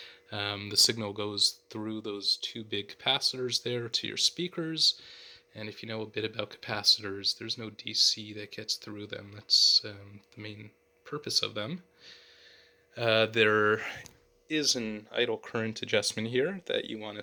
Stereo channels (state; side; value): identical; both; correlation 1.00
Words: The signal goes through those two big capacitors there to your speakers, and if you know a bit about capacitors, there's no DC that gets through them. That's the main purpose of them. There is an idle current adjustment here that you want to